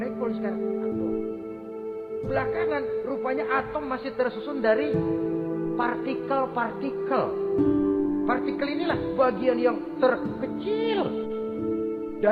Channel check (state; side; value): identical; both; correlation 1.00